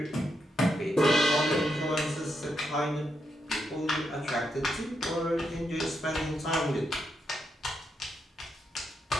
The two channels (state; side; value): normal; both; correlation 0.82